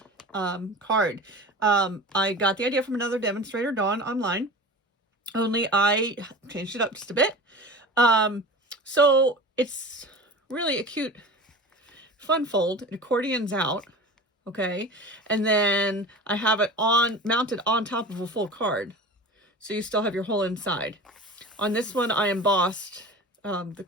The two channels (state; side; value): normal; both; correlation 0.35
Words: card. I got the idea from another demonstrator, Dawn, online, only I changed it up just a bit. So it's really a cute fun fold. It accordions out, okay, and then I have it mounted on top of a full card, so you still have your whole inside. On this one I embossed the